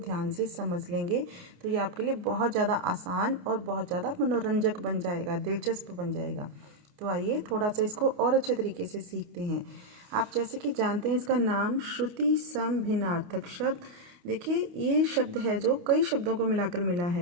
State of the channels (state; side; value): late; left; 28 ms